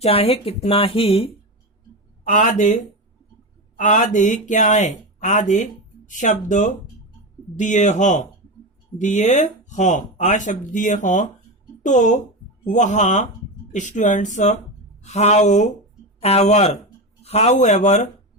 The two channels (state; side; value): normal; both; correlation 0.18